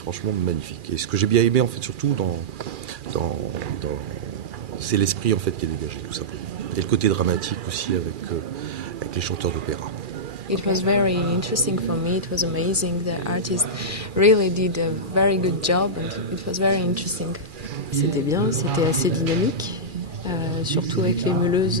magnifique. Et ce que j'ai bien aimé en fait surtout c'est l'esprit en fait qui est dégagé tout simplement. Et le côté dramatique aussi avec les chanteurs d'opéra. It was very interesting for me. It was amazing. The artist really did a very good job and it was very interesting. C'était bien, c'était assez dynamique. Surtout avec les meuleuses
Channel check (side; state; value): left; late; 2.4 ms